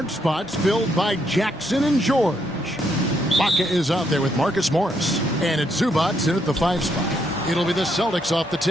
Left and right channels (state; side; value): normal; both; correlation 0.75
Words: spots filled by Jackson and George. Baca is out there with Marcus Morris, and it's Zubac in at the 5 spot. It'll be the Celtics off the